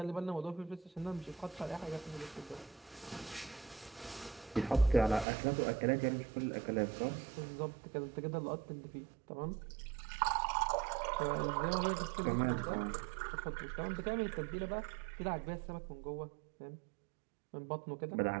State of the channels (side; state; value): left; drops out; at 5.2 s